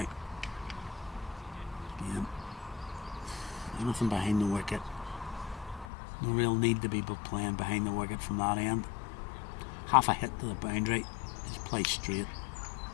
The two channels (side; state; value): right; drops out; at 5.9 s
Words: Again, anything behind the wicket. No real need to be playing behind the wicket from that end. Half a hit to the boundary, just play straight.